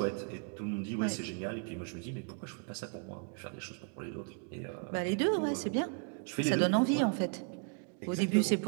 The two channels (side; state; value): left; quieter; 39.4 dB